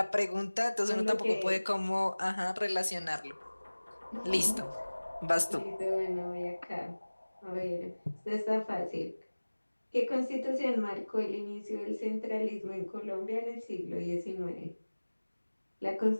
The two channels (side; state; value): both; inverted; correlation -1.00